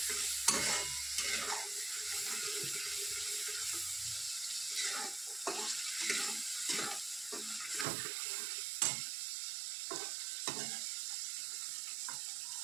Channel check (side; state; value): left; drops out; at 7.9 s